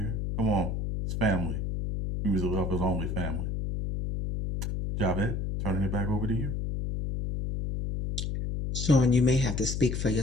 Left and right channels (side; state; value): left; noise; hum, 2 dB below the sound